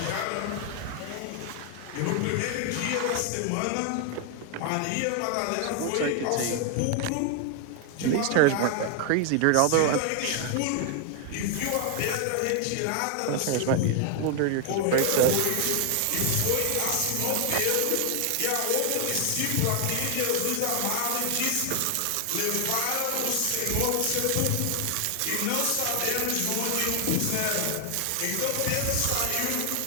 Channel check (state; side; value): different; both; correlation 0.00